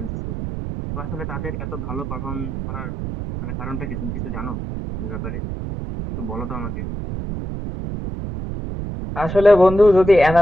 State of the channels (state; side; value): noise; right; rumble, 6 dB below the sound